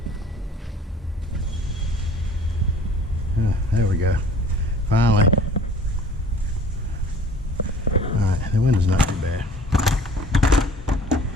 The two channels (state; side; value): normal; both; correlation 0.49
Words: There we go. Finally. Alright, the window's not too bad.